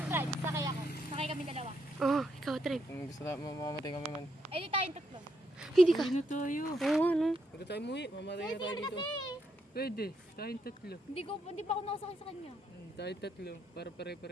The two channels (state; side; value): normal; both; correlation 0.77